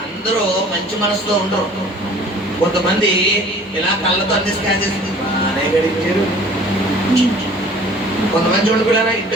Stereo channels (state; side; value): normal; both; correlation 0.49